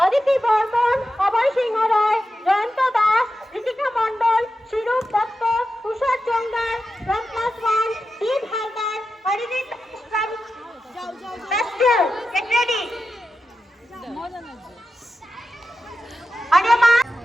Aditi Barman, Abhay Singh Roy, Jayanta Das, Ritika Mandal, Shirup Datta, Tushar Jongar from class 1 Deep Haldar, Haridit from Festival. Get ready. Adema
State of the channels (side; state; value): both; normal; correlation 0.91